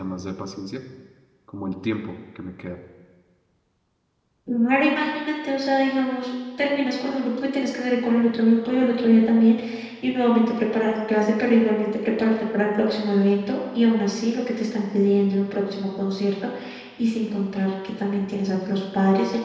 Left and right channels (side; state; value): both; identical; correlation 1.00